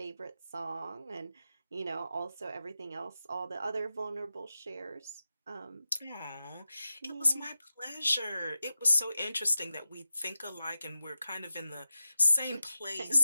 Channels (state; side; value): inverted; both; correlation -0.93